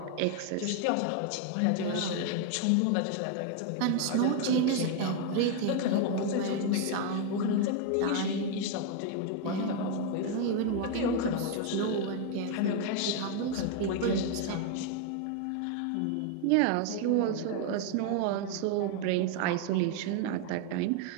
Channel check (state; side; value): different; both; correlation 0.01